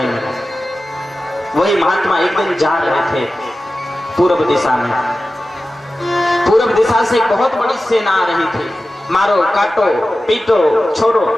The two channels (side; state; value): both; normal; correlation 0.94